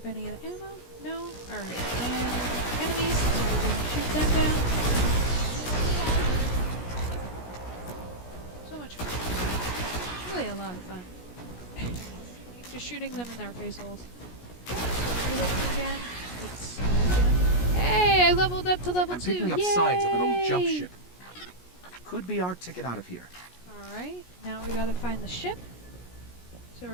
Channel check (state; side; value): late; right; 17 ms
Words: any of the ammo. No? Alright, and enemies, so we're going to shoot them down. So much fun. It's really a lot of fun. Just shooting them in their face holes. So reloading again. Hey, I leveled up to level 2. Picking up Yay! signs of an old jump ship. Could be our ticket out of here. Alright, now we gotta find the ship. So